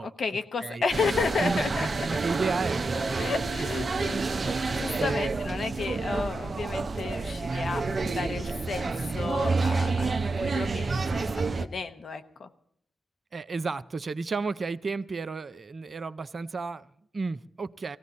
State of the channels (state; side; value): normal; both; correlation 0.87